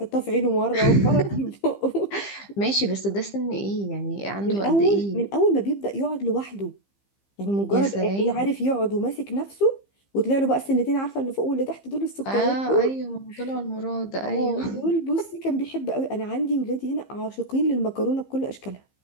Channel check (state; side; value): late; right; 15 ms